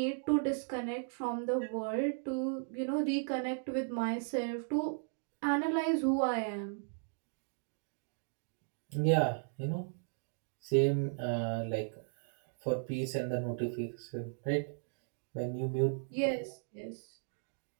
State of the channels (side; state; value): left; silent; digital silence